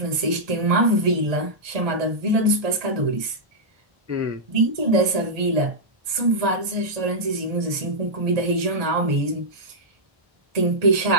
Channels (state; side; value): late; left; 1.7 ms